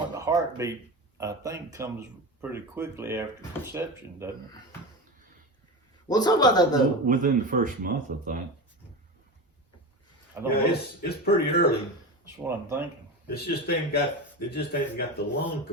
the heartbeat, I think, comes pretty quickly after conception, doesn't it? We'll talk about that though. Within the first month, I think. I don't Yeah, know. it's pretty early. That's what I'm thinking. It just ain't got the lung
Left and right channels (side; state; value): both; normal; correlation 0.24